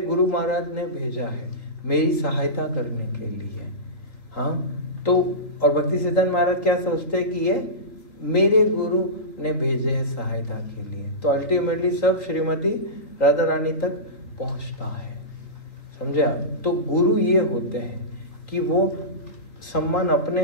महाराज ने भेजा है मेरी सहायता करने के लिए। हाँ, तो और भक्ति सिद्धांत महाराज क्या सोचते हैं कि ये मेरे गुरु ने भेजे हैं सहायता के लिए। तो अल्टीमेटली सब श्रीमती राधा रानी तक पहुंचता है, समझे आप। तो गुरु ये होते हैं कि वो सम्मान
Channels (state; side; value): late; right; 3.9 ms